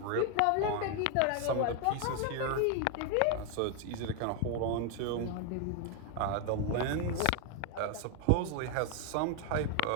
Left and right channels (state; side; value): different; both; correlation 0.01